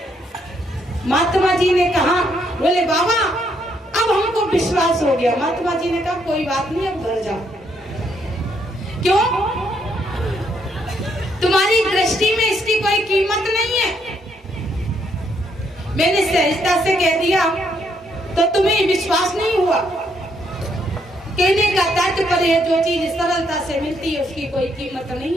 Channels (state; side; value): normal; both; correlation 0.73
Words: महात्मा जी ने कहा, बोले बाबा अब हमको विश्वास हो गया। महात्मा जी ने कहा कोई बात नहीं, अब घर जाओ। क्यों? तुम्हारी दृष्टि में इसकी कोई कीमत नहीं है। मैंने सहजता से कह दिया तो तुम्हें विश्वास नहीं हुआ। कहने का तात्पर्य जो चीज सरलता से मिलती है उसकी कोई कीमत नहीं